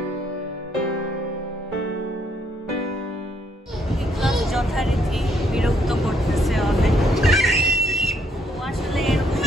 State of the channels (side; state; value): both; normal; correlation 0.70